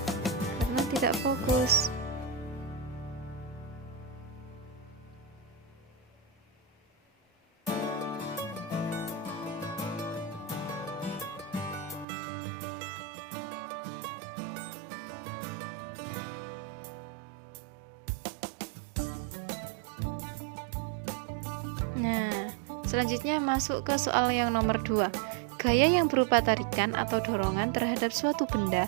karena tidak fokus. Nah, selanjutnya masuk ke soal yang nomor 2. Gaya yang berupa tarikan atau dorongan terhadap suatu benda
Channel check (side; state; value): left; drops out; at 12.1 s